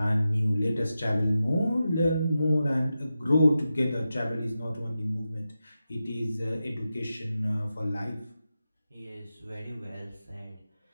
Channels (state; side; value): inverted; both; correlation -0.91